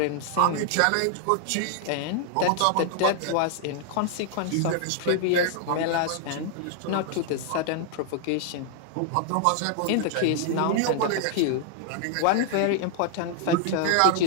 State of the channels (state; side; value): different; both; correlation 0.00